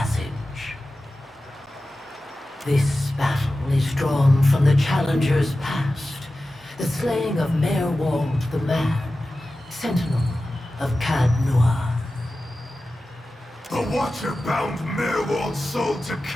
This battle is drawn from the challenger's past, the slaying of Merwald the Mad, sentinel of Cadnua. The Watcher bound Merwald's soul to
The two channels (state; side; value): normal; both; correlation 0.94